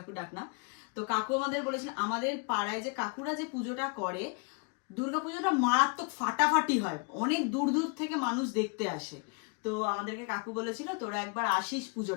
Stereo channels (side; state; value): right; quieter; 34.4 dB